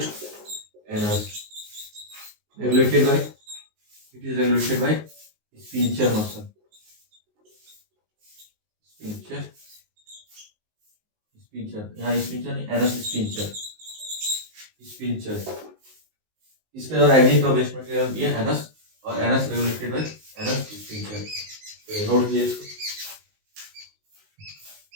regulated by, it is regulated by sphincter muscle, sphincter, यहाँ स्पिंचर नहीं, एनस स्पिंचर। इसके द्वारा एग्जिट ऑफ वेस्ट मटेरियल भी है एनस, और anus regulated by anus sphincter. Note कीजिए इसको।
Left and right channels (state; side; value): late; left; 19 ms